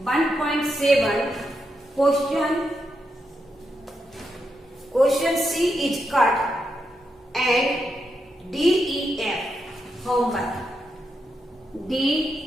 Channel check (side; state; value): both; normal; correlation 0.84